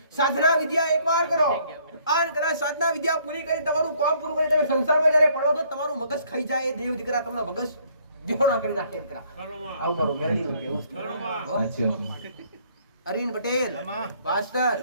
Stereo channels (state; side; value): inverted; both; correlation -0.63